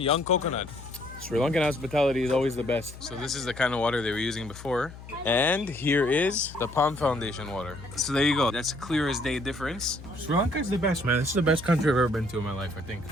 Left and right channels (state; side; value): noise; left; hum, 15 dB below the sound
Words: coconut. Sri Lankan hospitality is always the best. So this is the kind of water they were using before. And here is the Palm Foundation water. So there you go. That's a clear as day difference. Sri Lanka is the best, man. This is the best country I've ever been to in my life, I think.